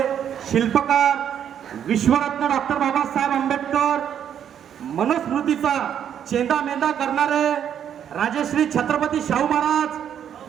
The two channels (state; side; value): quieter; left; 9.2 dB